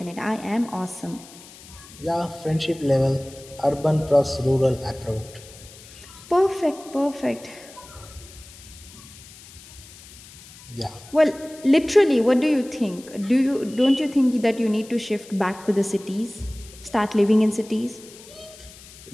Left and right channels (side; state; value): left; noise; hiss, 20 dB below the sound